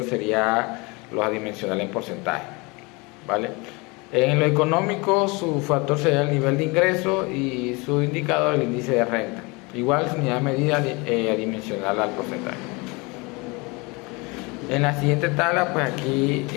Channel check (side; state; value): right; quieter; 27.0 dB